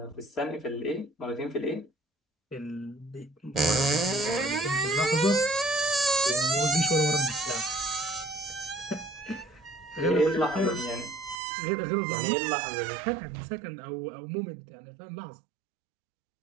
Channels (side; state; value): left; drops out; at 11.4 s